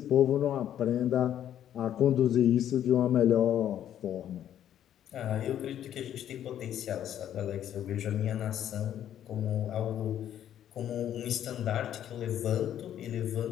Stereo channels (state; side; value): quieter; right; 10.7 dB